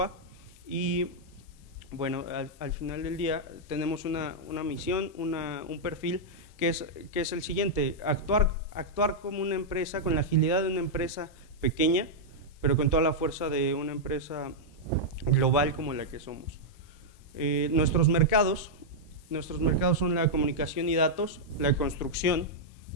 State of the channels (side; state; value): both; normal; correlation -0.06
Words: y bueno, al final del día tenemos una misión, un perfil que es el siguiente: actuar como una empresa, con la agilidad de una empresa pequeña, pero con toda la fuerza de una empresa global como la que somos. Nuestros mercados son la comunicación y datos, la construcción,